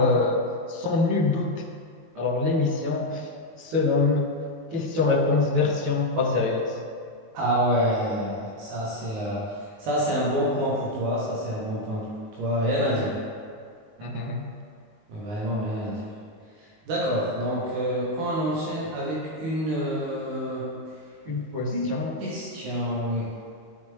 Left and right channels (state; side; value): late; left; 19 ms